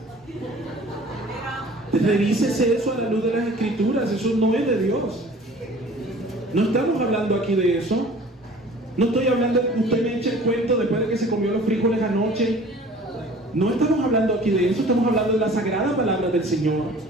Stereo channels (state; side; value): normal; both; correlation 0.47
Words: Revísese eso a la luz de las Escrituras. Eso no es de Dios. No estamos hablando aquí de eso. No estoy hablando de que usted me eche el cuento después de que se comió los frijoles anoche. No estamos hablando aquí de eso. Estamos hablando de la sagrada palabra del Señor,